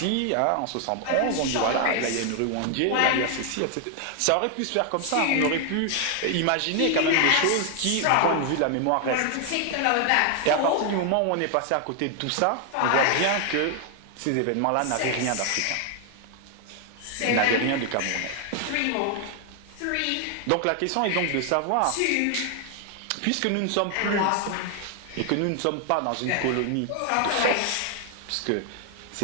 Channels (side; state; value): both; different; correlation 0.00